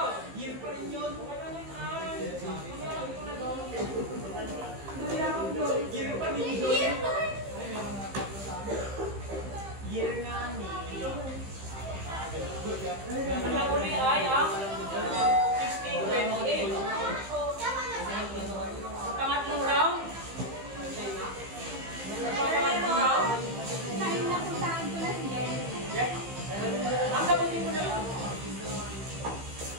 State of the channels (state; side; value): late; left; 15 ms